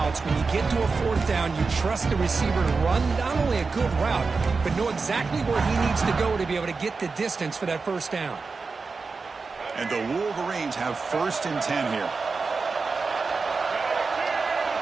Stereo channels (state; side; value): quieter; left; 4.4 dB